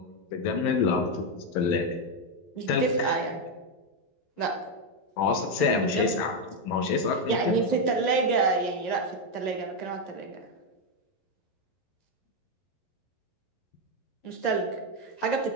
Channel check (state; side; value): late; right; 11 ms